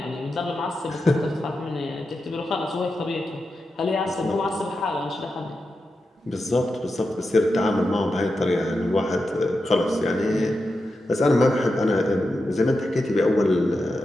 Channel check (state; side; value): normal; both; correlation 0.89